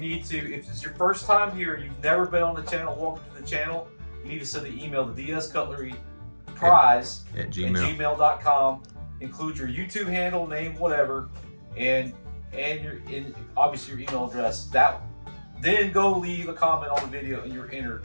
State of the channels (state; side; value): inverted; both; correlation -1.00